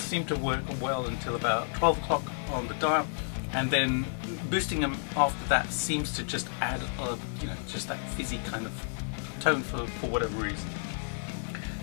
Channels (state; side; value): silent; right; digital silence